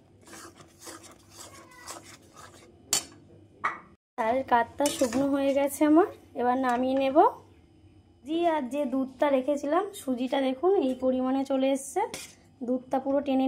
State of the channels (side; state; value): both; identical; correlation 1.00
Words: তালের কাঠটা শুকনো হয়ে গেছে আমার, এবার নামিয়ে নেব। আর যে দুধটা রেখেছিলাম, সুজিটা দেখুন এই পরিমাণে চলে এসছে, দুধটা পুরো টেনে